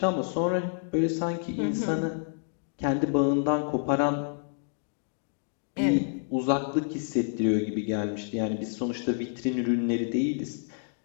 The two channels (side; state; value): right; silent; digital silence